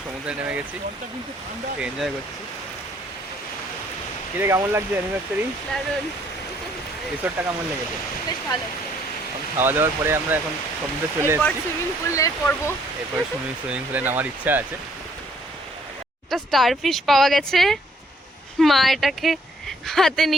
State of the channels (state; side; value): normal; both; correlation 0.65